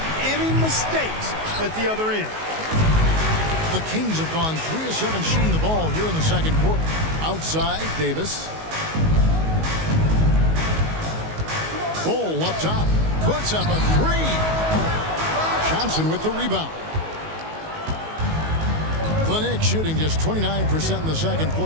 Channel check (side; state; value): left; late; 19 ms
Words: any mistakes at the other end. The Kings have gone 3 of 7 shooting the ball here in the second quarter. Outside, Davis. Bull up top. Puts up a 3. Johnson with the rebound. The Knicks shooting just 29% in the second